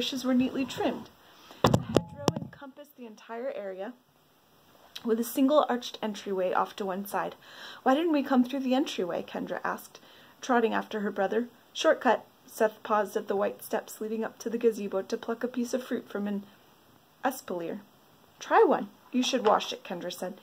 were neatly trimmed. The hedgerow encompassed the entire area, with a single arched entryway off to one side. "Why didn't we come through the entryway?" Kendra asked, trotting after her brother. "Shortcut." Seth paused at the white steps leading up to the gazebo to pluck a piece of fruit from an espalier. "Try one." "You should wash it," Kendra said.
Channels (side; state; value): both; identical; correlation 1.00